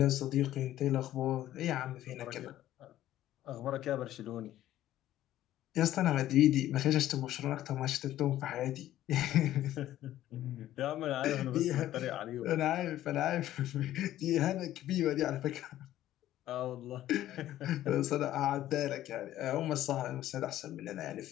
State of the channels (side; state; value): right; quieter; 13.4 dB